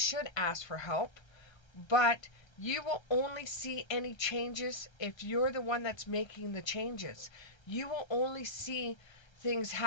ask for help, but you will only see any changes if you're the one that's making the changes. You will only see things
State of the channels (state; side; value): late; right; 1.3 ms